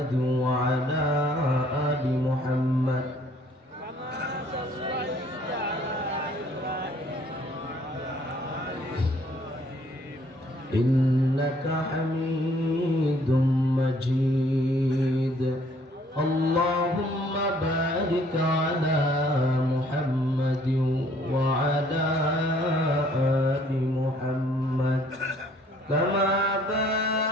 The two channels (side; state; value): both; normal; correlation 0.61